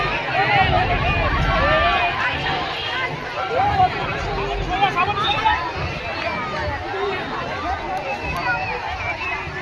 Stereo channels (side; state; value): both; identical; correlation 1.00